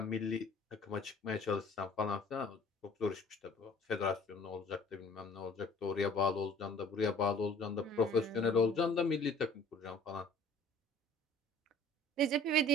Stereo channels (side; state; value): both; normal; correlation 0.51